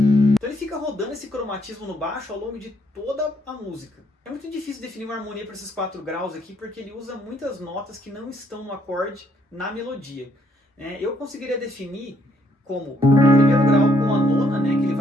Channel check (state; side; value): normal; both; correlation 0.70